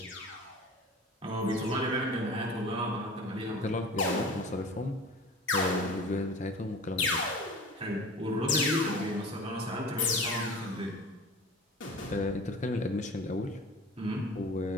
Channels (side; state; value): both; normal; correlation 0.38